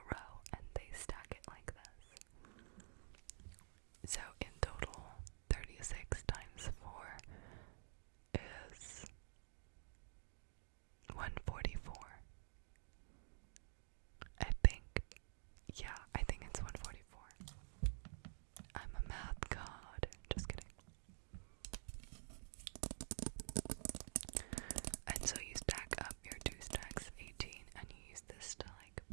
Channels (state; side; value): silent; left; digital silence